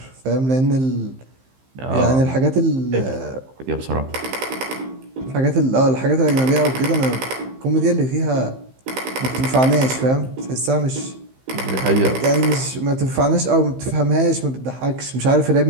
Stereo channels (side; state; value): left; late; 15 ms